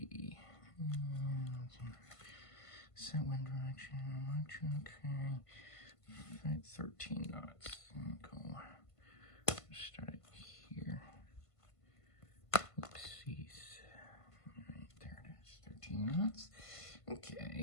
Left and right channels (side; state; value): right; late; 1.5 ms